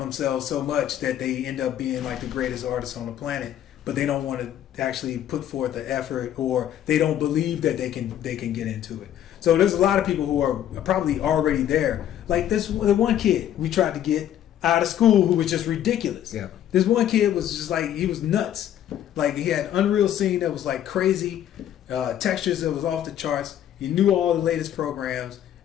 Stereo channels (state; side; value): quieter; right; 10.9 dB